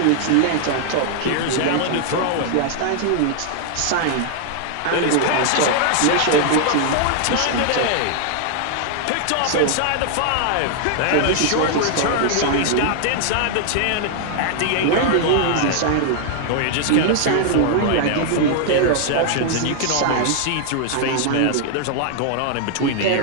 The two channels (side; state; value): both; different; correlation 0.00